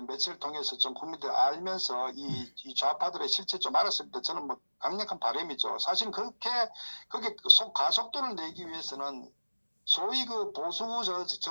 매체를 통해서 좀 국민들 알면서 이 좌파들의 실체 좀 알았을 때 저는 뭐 강력한 바람이죠. 사실 그게 가속도를 내기 위해서는 소위 그 보수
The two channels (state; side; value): inverted; both; correlation -1.00